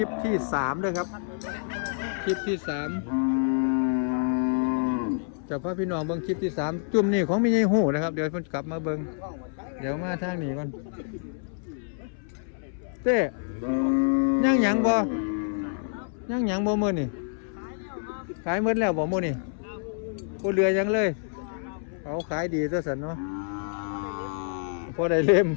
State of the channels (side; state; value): right; silent; 60 dB below the other